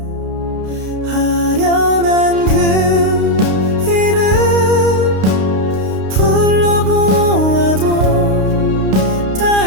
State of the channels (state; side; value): late; left; 32 ms